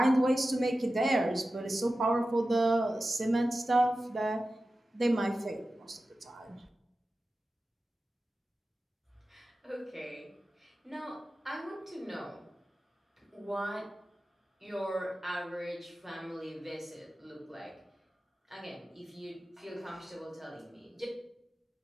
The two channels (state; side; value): normal; both; correlation 0.94